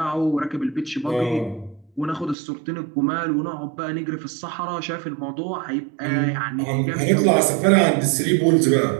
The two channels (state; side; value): drops out; left; at 2.4 s